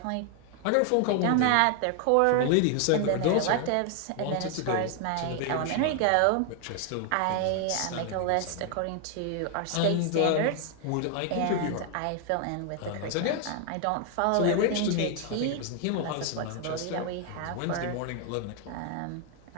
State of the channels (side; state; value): both; different; correlation 0.00